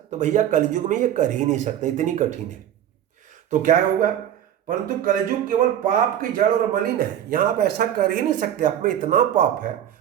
भैया कलयुग में ये कर ही नहीं सकते, इतनी कठिन है। तो क्या होगा? परंतु कलयुग केवल पाप की जड़ और मलिन है। यहाँ आप ऐसा कर ही नहीं सकते, आप में इतना पाप है,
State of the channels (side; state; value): left; quieter; 10.7 dB